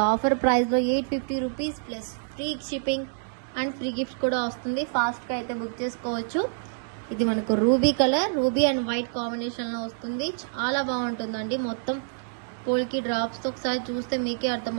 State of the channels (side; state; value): left; silent; digital silence